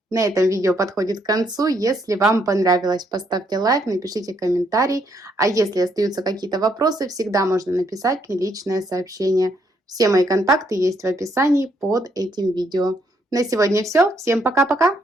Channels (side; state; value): both; normal; correlation 0.73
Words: На этом видео подходит к концу. Если вам понравилось, поставьте лайк, напишите комментарий. А если остаются какие-то вопросы, всегда можно написать мне личное сообщение. Все мои контакты есть в описании под этим видео. На сегодня все. Всем пока-пока!